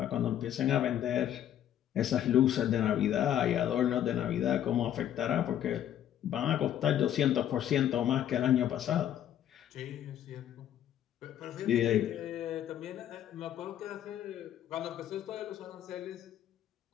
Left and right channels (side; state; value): right; quieter; 10.9 dB